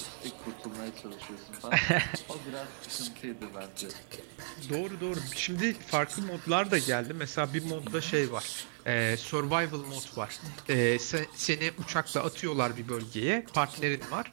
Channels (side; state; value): left; silent; digital silence